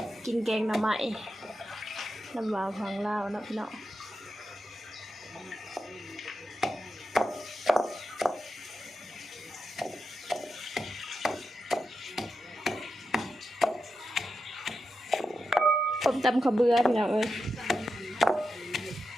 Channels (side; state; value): both; normal; correlation 0.88